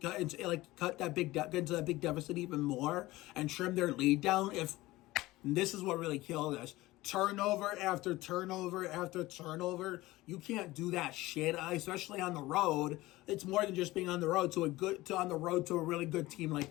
big deficit even more, and trim their lead down. If this is what really killed us, turnover after turnover after turnover. You can't do that shit, especially on the road. It's more than just being on the road to a really good team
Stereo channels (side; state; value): right; quieter; 18.7 dB